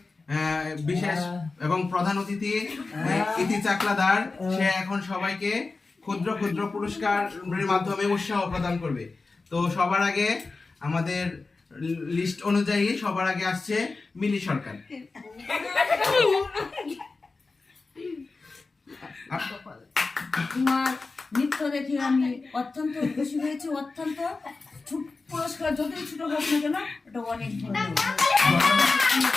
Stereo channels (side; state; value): right; quieter; 3.9 dB